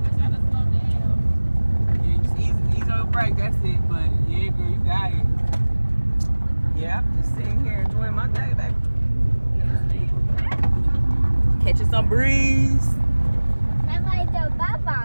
I try to slow down. Yeah, just ease on your brake, that's it. But yeah, girl, you got it. Yeah, I'm just sitting here enjoying my day, baby. Catching some breeze. That's like the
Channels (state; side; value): inverted; both; correlation -1.00